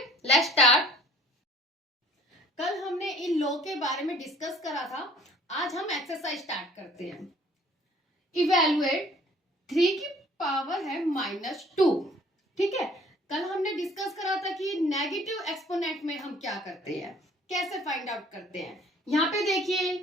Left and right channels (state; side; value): normal; both; correlation 0.54